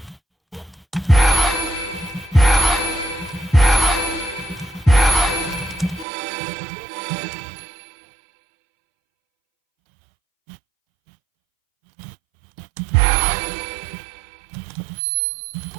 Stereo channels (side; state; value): left; drops out; at 6.1 s